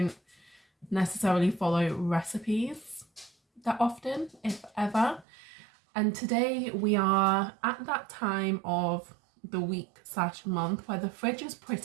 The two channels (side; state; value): left; drops out; at 5.2 s